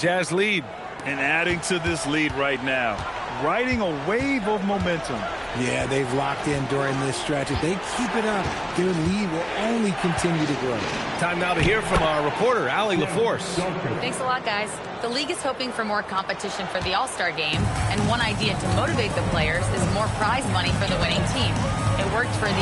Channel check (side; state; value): both; identical; correlation 1.00